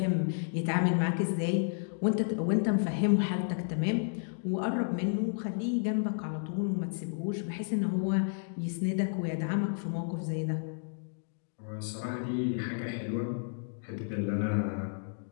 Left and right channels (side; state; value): right; silent; digital silence